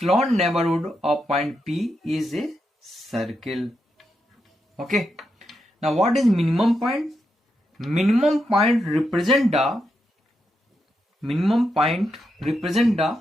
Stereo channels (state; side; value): normal; both; correlation 0.84